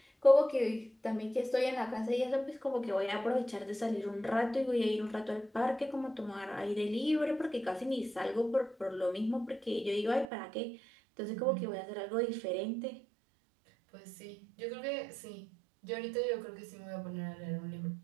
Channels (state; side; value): drops out; left; at 10.2 s